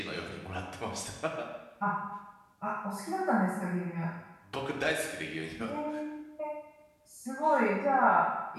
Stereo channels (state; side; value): identical; both; correlation 1.00